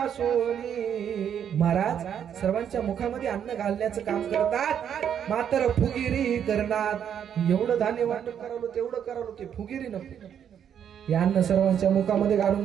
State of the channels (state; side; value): quieter; left; 8.7 dB